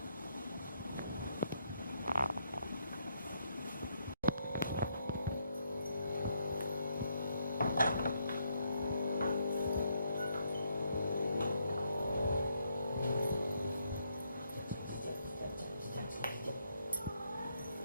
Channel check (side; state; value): both; inverted; correlation -0.75